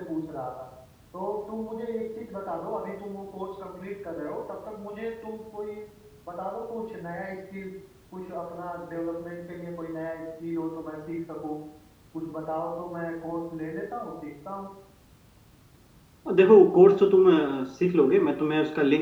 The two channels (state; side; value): identical; both; correlation 1.00